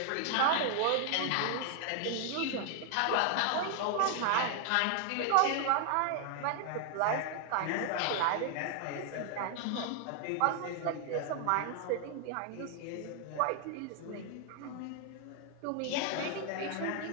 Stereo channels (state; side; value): different; both; correlation 0.00